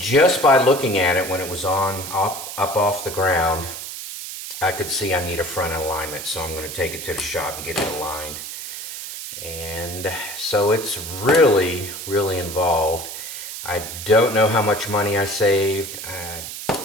by looking at it when it was on up off the ground, I could see I need a front alignment. So I'm going to take it to the shop and get it aligned. And so it's really, really involved. I don't know how much money I saved.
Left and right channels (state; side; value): noise; right; hiss, 9 dB below the sound